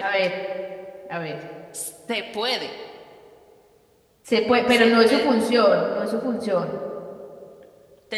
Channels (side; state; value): both; identical; correlation 1.00